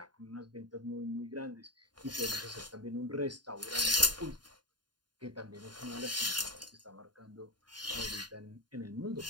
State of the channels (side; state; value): left; late; 0.70 ms